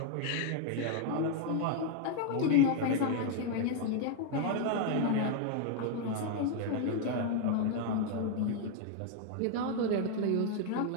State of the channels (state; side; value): different; both; correlation 0.00